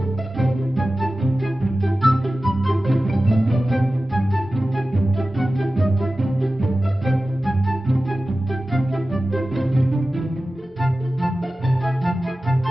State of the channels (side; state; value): both; normal; correlation 0.95